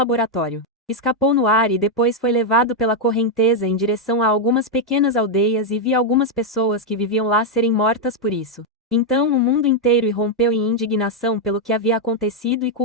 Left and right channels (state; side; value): normal; both; correlation 0.00